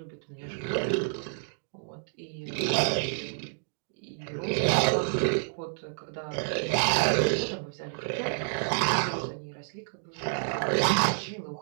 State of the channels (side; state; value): left; silent; digital silence